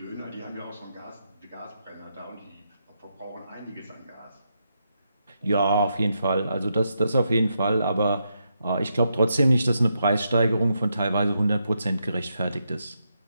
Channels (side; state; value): both; inverted; correlation -0.82